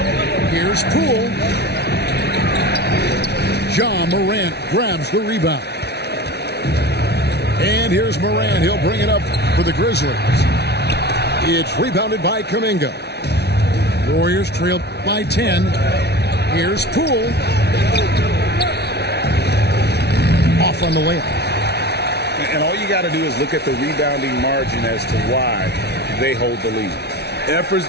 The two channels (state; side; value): late; right; 0.49 ms